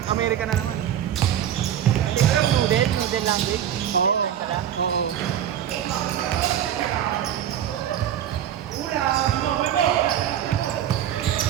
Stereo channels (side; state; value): left; quieter; 10.3 dB